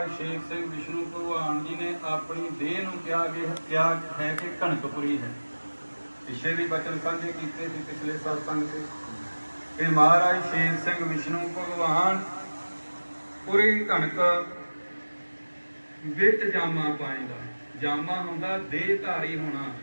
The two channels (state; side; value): inverted; both; correlation -1.00